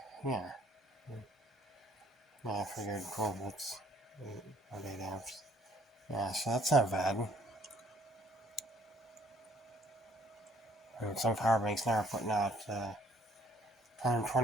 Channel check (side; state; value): both; normal; correlation 0.61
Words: yeah. I figured 12 volts, 8 amps. Yeah, so that's not bad. And some power banks now are putting out